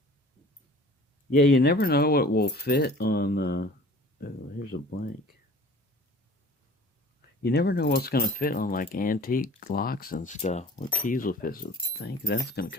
Yeah, you never know what will fit on, oh, here's a blank. You never know what's going to fit on like antique locks and stuff. What keys will fit, so I think that's going to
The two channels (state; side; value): normal; both; correlation 0.46